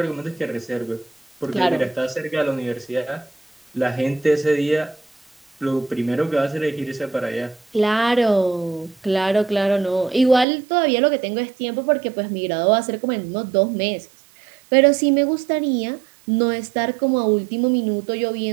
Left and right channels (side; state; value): left; drops out; at 10.5 s